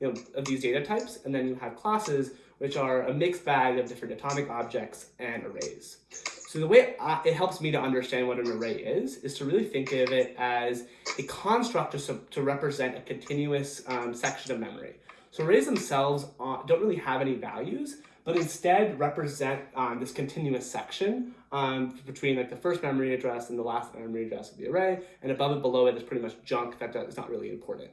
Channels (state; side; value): identical; both; correlation 1.00